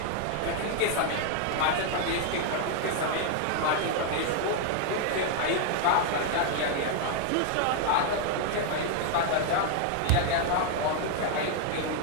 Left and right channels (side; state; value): both; different; correlation 0.00